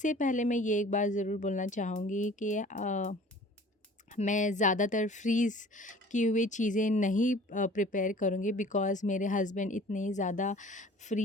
पहले मैं ये एक बात ज़रूर बोलना चाहूँगी कि मैं ज़्यादातर फ्रीज़ की हुई चीज़ें नहीं प्रिपेयर करूँगी, बिकॉज़ मेरे हस्बैंड इतने ज़्यादा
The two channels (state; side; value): normal; both; correlation 0.48